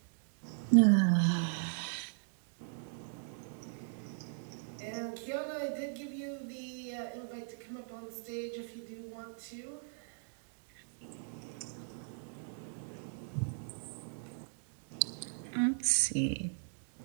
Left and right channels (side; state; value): left; silent; digital silence